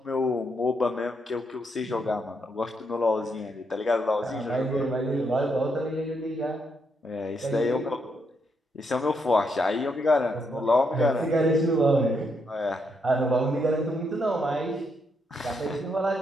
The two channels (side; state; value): both; normal; correlation 0.78